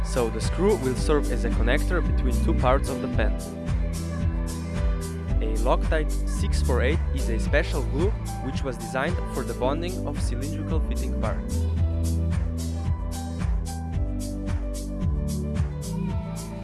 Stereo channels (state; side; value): identical; both; correlation 1.00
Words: so the screw will serve as a connector between two parts of the pen. A Loctite 648 is a special glue which was designed for the bonding of cylindrical fitting parts.